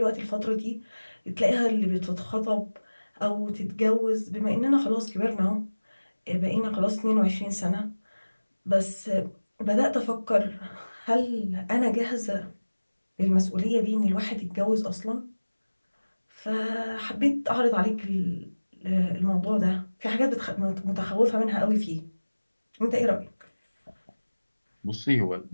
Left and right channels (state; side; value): inverted; both; correlation -1.00